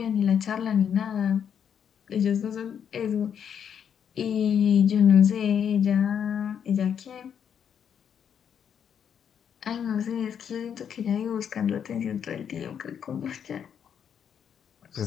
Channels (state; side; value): quieter; right; 8.1 dB